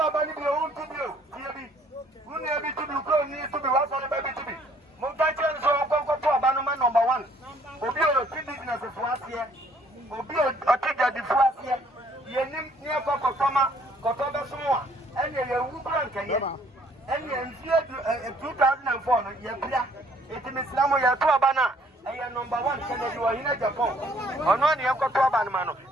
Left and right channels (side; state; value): both; normal; correlation 0.61